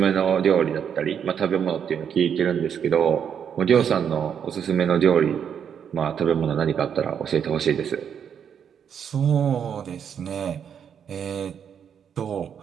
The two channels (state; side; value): quieter; left; 8.0 dB